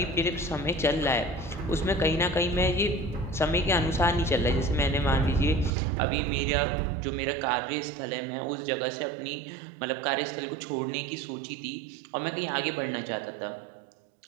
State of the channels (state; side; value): drops out; left; at 5.7 s